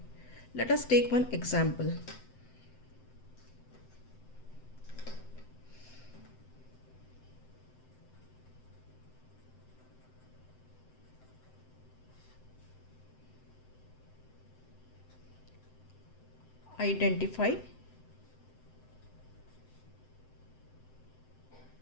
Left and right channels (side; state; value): right; late; 7.8 ms